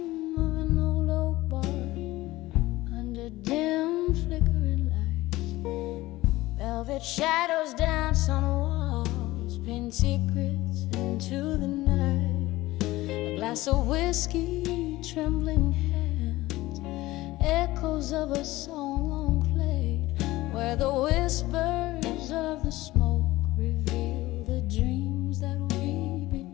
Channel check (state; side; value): quieter; right; 18.1 dB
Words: of an old oak barn, under dim flickering lights, velvet shadows dance on walls, pin secrets into the night. A glass of whiskey, trembling hands, echoes of a song long played, where the whispers of the smoke reveal the dreams that we